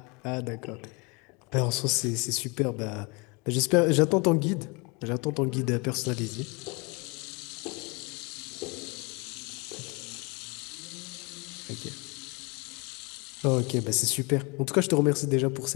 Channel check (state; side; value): quieter; right; 29.5 dB